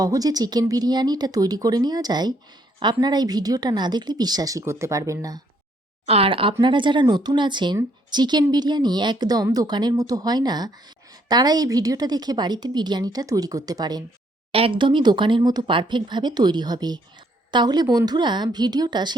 চিকেন বিরিয়ানিটা তৈরি করে নেওয়া যায়, আপনারা এই ভিডিওটা না দেখলে বিশ্বাসই করতে পারবেন না। আর আপনারা যারা নতুন আছেন, চিকেন বিরিয়ানি একদম দোকানের মতো হয় না, তারা এই ভিডিওটা দেখে বাড়িতে বিরিয়ানিটা তৈরি করতে পারেন। একদমই দোকানের মতো পারফেক্টভাবে তৈরি হবে। তাহলে বন্ধুরা, ভিডিওটা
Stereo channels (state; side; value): normal; both; correlation 0.69